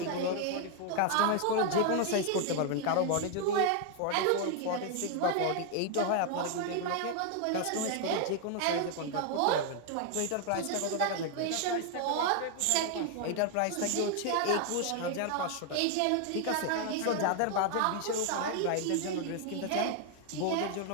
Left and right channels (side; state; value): both; different; correlation 0.00